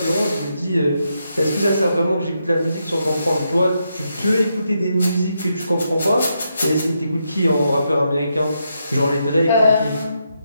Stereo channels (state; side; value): inverted; both; correlation -0.82